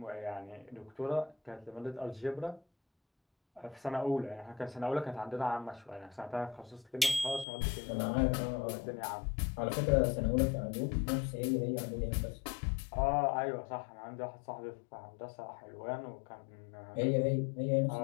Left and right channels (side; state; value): right; drops out; at 7.5 s